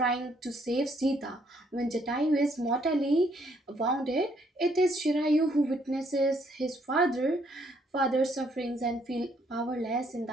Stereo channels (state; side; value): normal; both; correlation 0.69